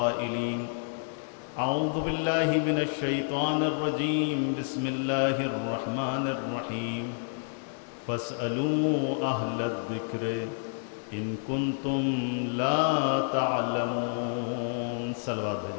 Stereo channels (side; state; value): right; silent; 58 dB below the other